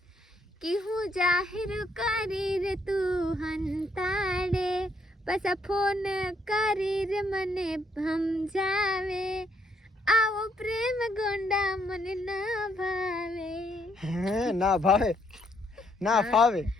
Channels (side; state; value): both; normal; correlation 0.72